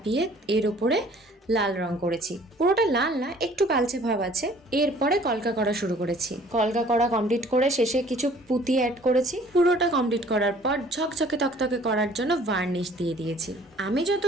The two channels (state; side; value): normal; both; correlation 0.54